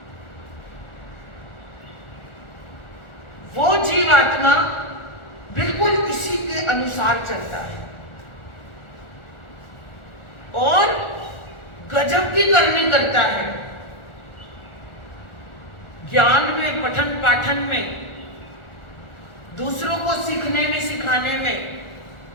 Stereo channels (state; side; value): late; right; 1.4 ms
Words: वो जीवात्मा बिल्कुल इसी के अनुसार चलता है और गजब की करनी करता है। ज्ञान में, पठन पाठन में, दूसरों को सीखने में सिखाने में,